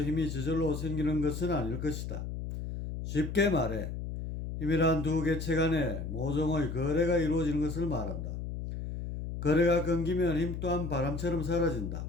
힘이 저절로 생기는 것은 아닐 것이다. 쉽게 말해 힘이란 두 개체 간의 모종의 거래가 이루어지는 것을 말한다. 거래가 끊기면 힘 또한 바람처럼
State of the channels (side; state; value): left; noise; hum, 6 dB below the sound